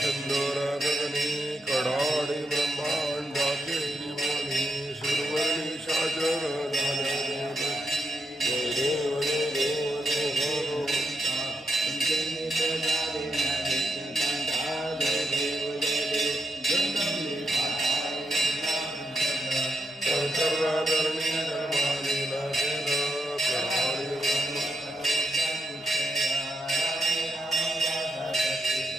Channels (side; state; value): both; normal; correlation 0.83